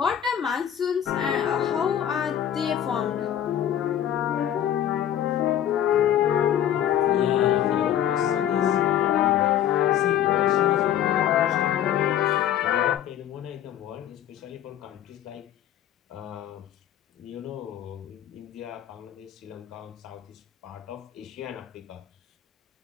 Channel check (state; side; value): quieter; right; 10.6 dB